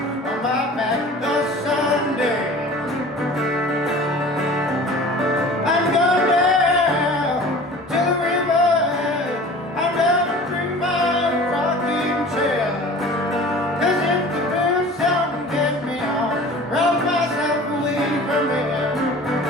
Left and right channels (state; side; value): normal; both; correlation 0.42